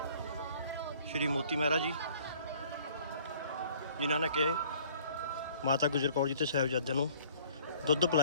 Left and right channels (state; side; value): inverted; both; correlation -0.55